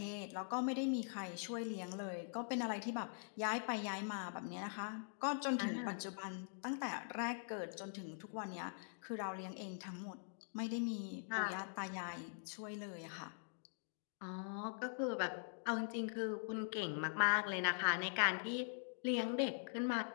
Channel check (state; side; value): silent; right; digital silence